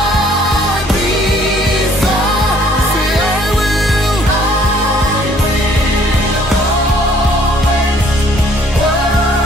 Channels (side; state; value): both; normal; correlation 0.60